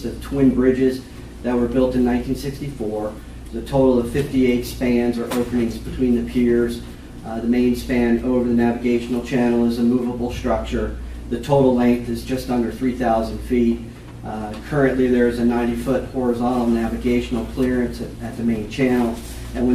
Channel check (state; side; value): identical; both; correlation 1.00